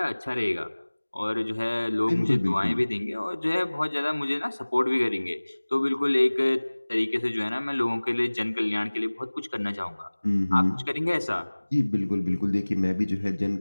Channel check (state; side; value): inverted; both; correlation -1.00